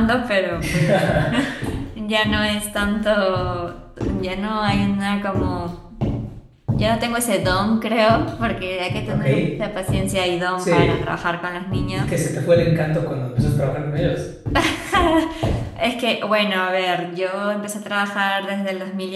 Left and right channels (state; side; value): identical; both; correlation 1.00